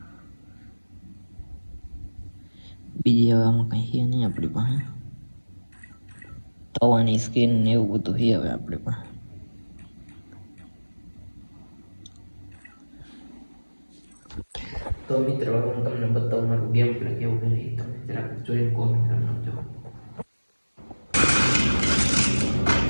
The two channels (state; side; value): inverted; both; correlation -1.00